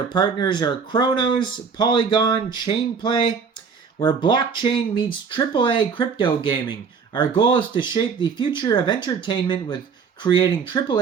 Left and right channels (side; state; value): left; quieter; 5.9 dB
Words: partners are Chronos, Polygon, Chainplay, where blockchain meets AAA crypto gaming. Our goal is to shape the future of entertainment with creating